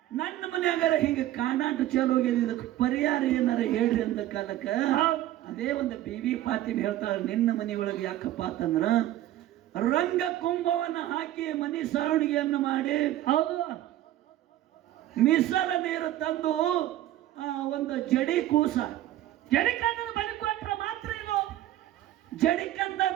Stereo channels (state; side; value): quieter; left; 13.8 dB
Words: ನನ್ನ ಮನ್ಯಾಗಾರ ಹಿಂಗ ಕಾಡಾಟ ಚಾಲು ಹೋಗ್ಯದ, ಇದಕ್ಕೆ ಪರಿಹಾರ ಏನಾರ ಹೇಳ್ರಿ ಅಂದ ಕಾಲಕ್ಕ ಅದೇ ಒಂದು ಬೇಬಿ ಪಾತಿಮ ಹೇಳ್ತಾಳ, ನಿನ್ನ ಮನೆಯೊಳಗೆ ಯಾಕಪ್ಪ ಅಂತಂದ್ರ ರಂಗ ಕುಂಭವನ್ನ ಹಾಕಿ ಮನಿ ಸಾವಣಿಗೆಯನ್ನು ಮಾಡಿ, ಹೌದು, ಮೀಸಲ ನೀರು ತಂದು ಒಂದು ಜಡಿ ಕೂಸ, ಜಡಿಕಂದ ಬಲಿ ಕೊಟ್ರ ಮಾತ್ರ ಇದು